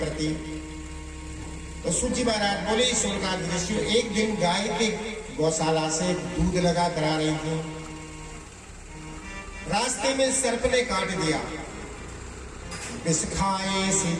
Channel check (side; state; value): both; identical; correlation 1.00